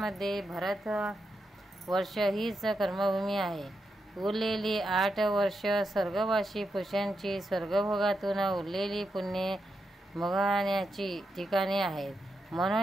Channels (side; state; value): both; normal; correlation 0.85